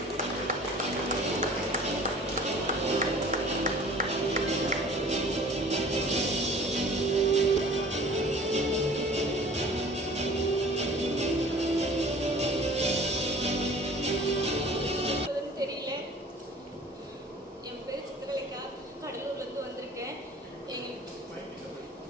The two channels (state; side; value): normal; both; correlation 0.47